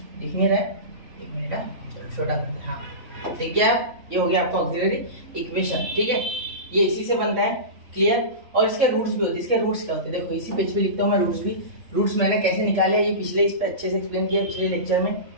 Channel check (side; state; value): left; late; 3.5 ms